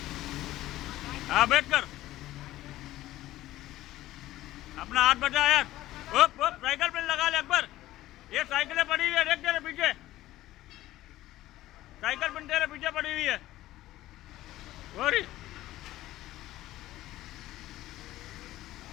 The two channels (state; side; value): quieter; right; 15.5 dB